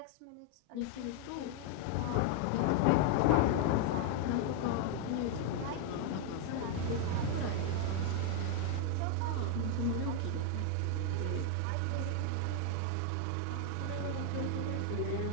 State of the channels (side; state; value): both; different; correlation 0.00